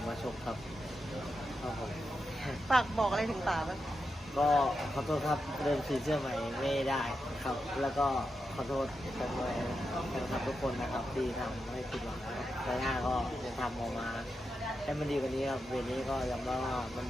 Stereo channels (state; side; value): normal; both; correlation 0.88